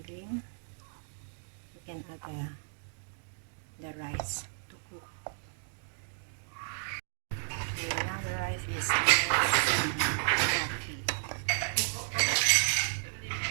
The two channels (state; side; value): silent; left; digital silence